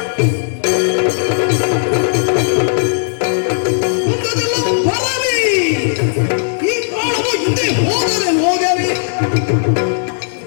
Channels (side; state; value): right; silent; digital silence